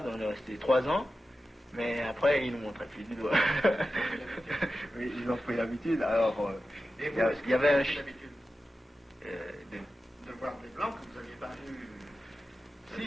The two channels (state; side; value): normal; both; correlation 0.93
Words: on est resté 3 ans. Mais après, ils nous montraient plus du doigt. Oui, ils ont pris l'habitude. Alors, il y avait un... l'habitude de voir des blancs que vous n'aviez pas